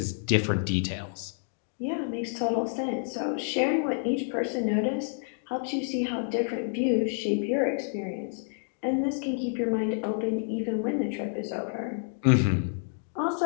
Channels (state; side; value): silent; right; digital silence